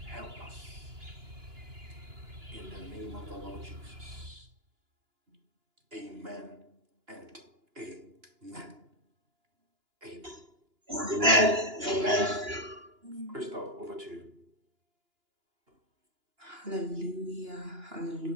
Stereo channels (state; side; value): late; left; 2.9 ms